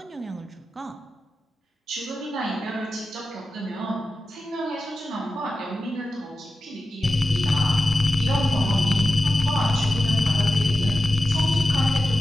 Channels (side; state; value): both; normal; correlation 0.93